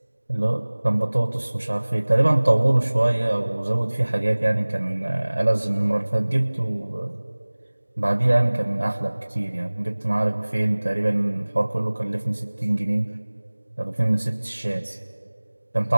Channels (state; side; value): inverted; both; correlation -1.00